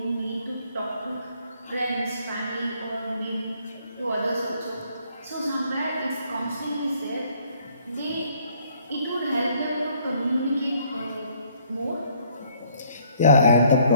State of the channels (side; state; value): both; inverted; correlation -0.64